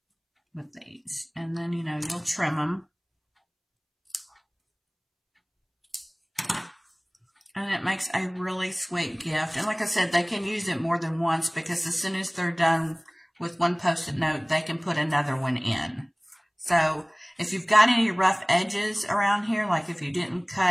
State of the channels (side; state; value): both; identical; correlation 1.00